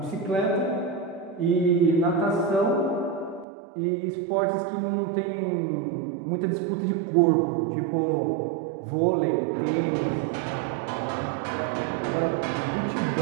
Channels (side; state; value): left; drops out; at 3.5 s